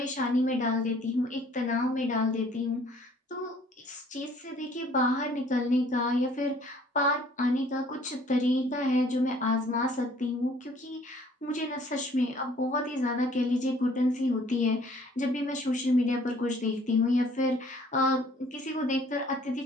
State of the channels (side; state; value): both; normal; correlation 0.57